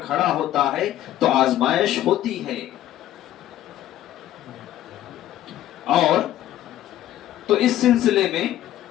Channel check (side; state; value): right; quieter; 12.9 dB